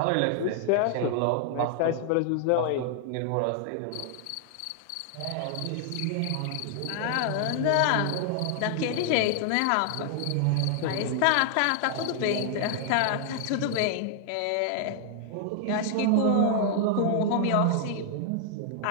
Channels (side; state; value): both; different; correlation 0.00